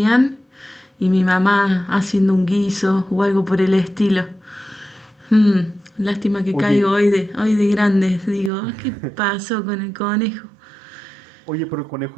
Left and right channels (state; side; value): drops out; left; at 8.5 s